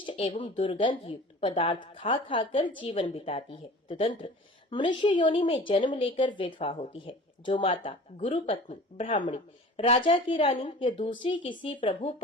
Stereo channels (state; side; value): normal; both; correlation 0.41